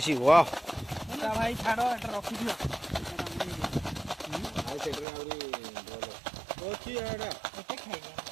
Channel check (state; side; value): drops out; left; at 5.1 s